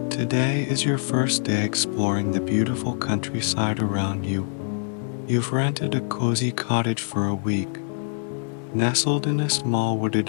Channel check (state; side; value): silent; right; digital silence